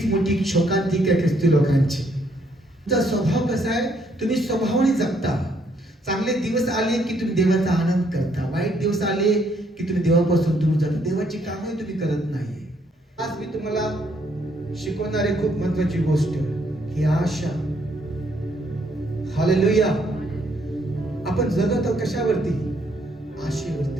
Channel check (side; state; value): both; normal; correlation 0.70